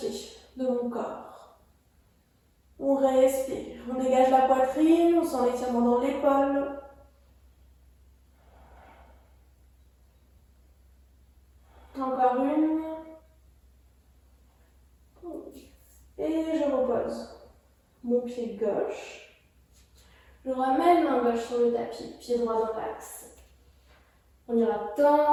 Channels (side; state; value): both; identical; correlation 1.00